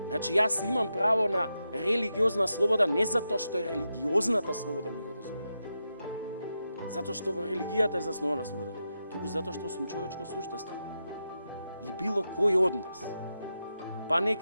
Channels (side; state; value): both; inverted; correlation -0.88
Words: Значи, јас имам право на религиозна слобода не затоа што е религиозната слобода ми го дозволува. Затоа што во религијата е заснувана слободата, туку затоа што сум човечко суштество. И било кој од нас, па